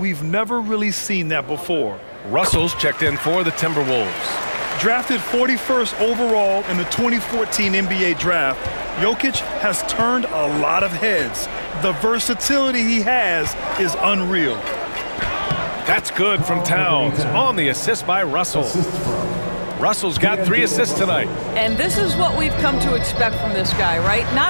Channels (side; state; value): both; inverted; correlation -1.00